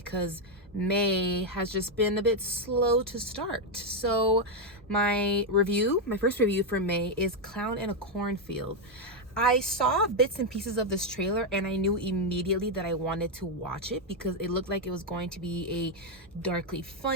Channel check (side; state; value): both; normal; correlation 0.03